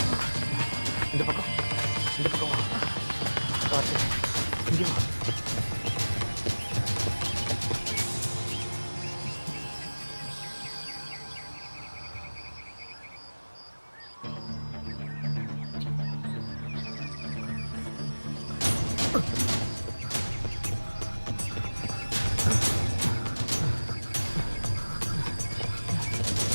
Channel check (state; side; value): inverted; both; correlation -1.00